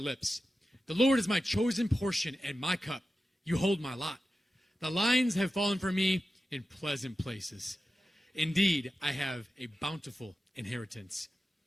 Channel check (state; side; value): normal; both; correlation 0.93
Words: The Lord is my chosen portion and my cup. You hold my lot. The lines have fallen for me in pleasant places. Indeed, I have a bountiful inheritance.